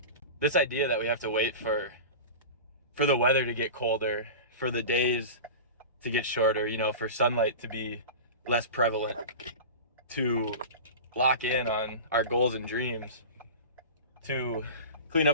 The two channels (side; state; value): both; inverted; correlation -0.30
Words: This idea that we have to wait for the weather to get colder, for the days to get shorter, for sunlight to be less prevalent, to lock in on our goals and dreams, to clean